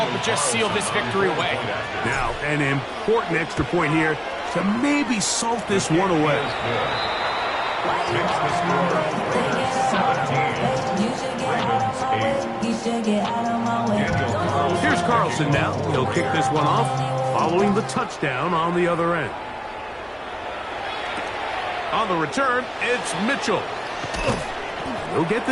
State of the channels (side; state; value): both; identical; correlation 1.00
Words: but just seal this victory away. Now, an important extra point here to maybe salt this one away. Takes the score. 17. Here's Carlson now. He'll kick this one off following the touchdown on the other end. On the return, it's Mitchell. They'll get